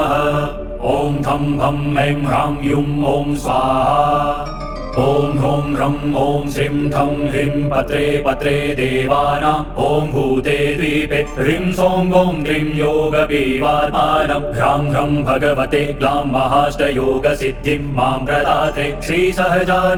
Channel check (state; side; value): identical; both; correlation 1.00